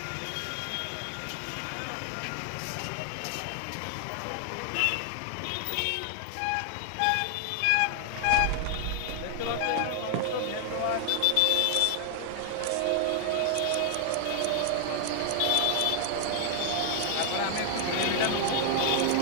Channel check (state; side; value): different; both; correlation 0.00